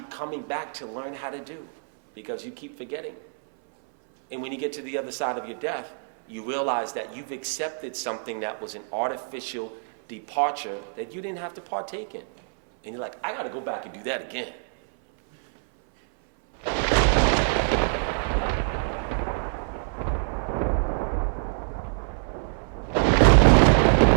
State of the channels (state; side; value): silent; left; 60 dB below the other